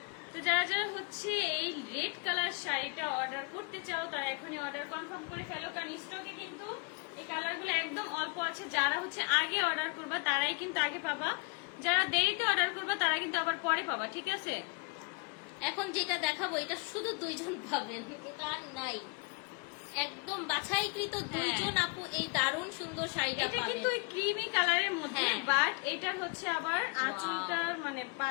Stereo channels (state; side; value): quieter; right; 31.9 dB